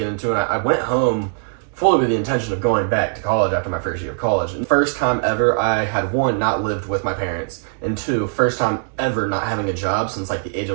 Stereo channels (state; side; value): silent; left; 65 dB below the other